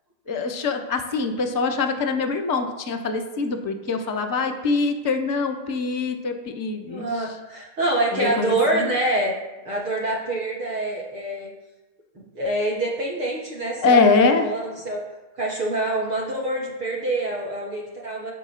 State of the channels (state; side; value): late; left; 6.0 ms